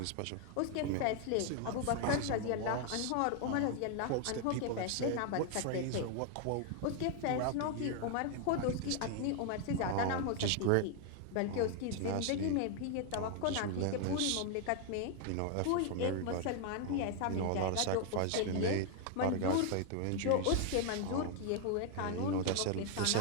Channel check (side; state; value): both; different; correlation 0.00